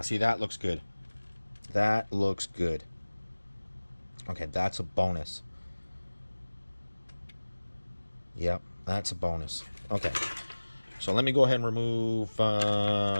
see, that looks good. That looks good. Okay, that's a bonus. Yep, that's a bonus. Okay, so let me go ahead and remove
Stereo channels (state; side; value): inverted; both; correlation -1.00